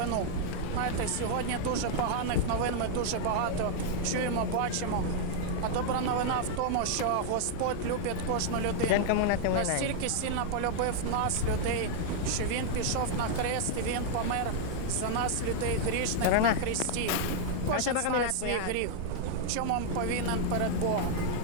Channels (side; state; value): both; different; correlation -0.01